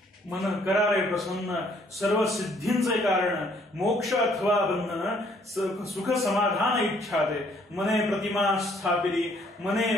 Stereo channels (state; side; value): normal; both; correlation 0.64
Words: मन करा रे प्रसन्न, सर्व सिद्धींचे कारण, मोक्ष अथवा बंधन, सुख समाधान इच्छा दे. मने प्रतिमा स्थापिली,